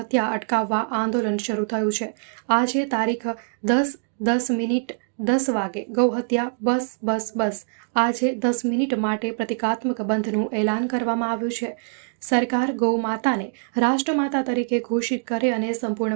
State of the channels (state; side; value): silent; left; digital silence